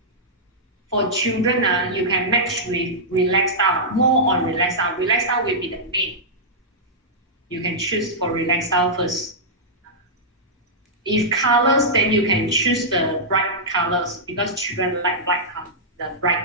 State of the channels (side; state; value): both; normal; correlation -0.11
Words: for children, you can match with relaxed style, more on relaxed style. Relaxed style will be the main. You can choose for relaxed style first. If colors, then you can choose the bright colors because children like bright color, the